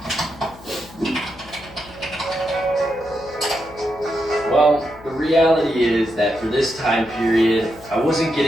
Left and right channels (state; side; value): noise; left; hum, 20 dB below the sound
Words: Well, the reality is that for this time period, I wasn't